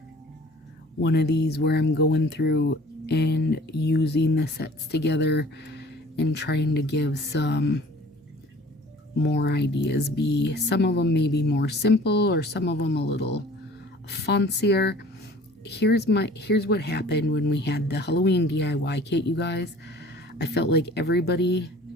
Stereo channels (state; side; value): normal; both; correlation 0.49